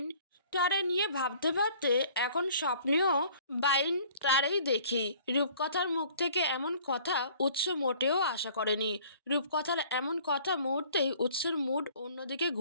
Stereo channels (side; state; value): both; inverted; correlation -0.53